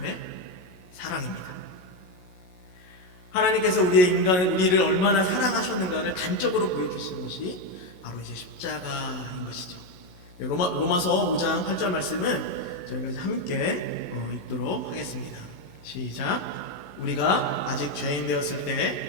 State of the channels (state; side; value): late; right; 11 ms